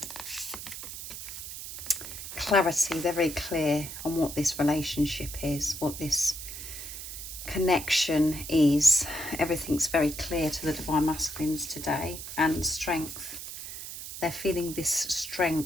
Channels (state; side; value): noise; right; hiss, 9 dB below the sound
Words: Clarity. They're very clear on what this relationship is, what this connection is. Everything's very clear to the Divine Masculines today. And strength. They're feeling this